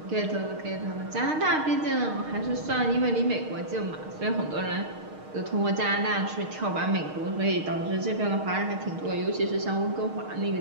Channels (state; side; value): late; left; 6.5 ms